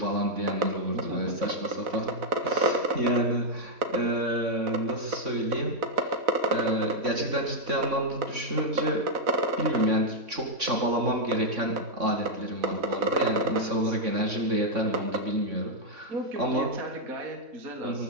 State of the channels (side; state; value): left; late; 3.6 ms